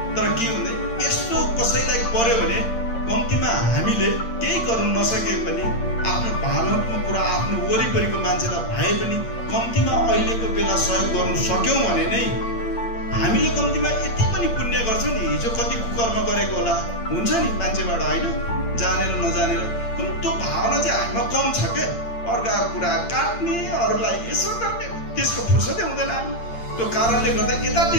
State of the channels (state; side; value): late; right; 8.7 ms